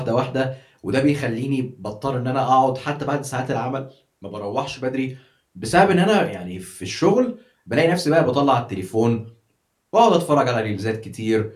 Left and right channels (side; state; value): both; identical; correlation 1.00